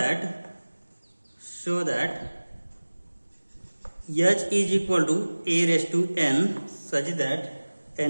H is equal to A raised to n such that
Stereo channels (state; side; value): inverted; both; correlation -1.00